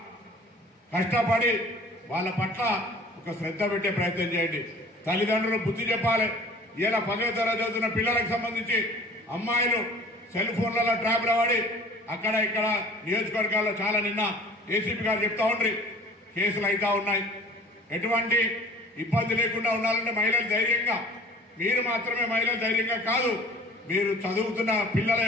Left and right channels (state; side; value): normal; both; correlation 0.47